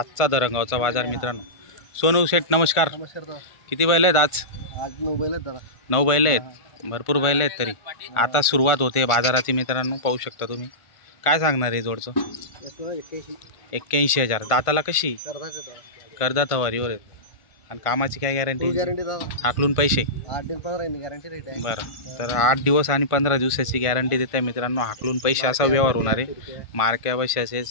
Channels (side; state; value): right; late; 1.5 ms